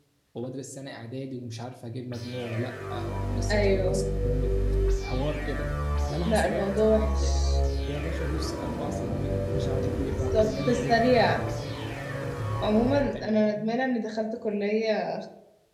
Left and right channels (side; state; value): both; identical; correlation 1.00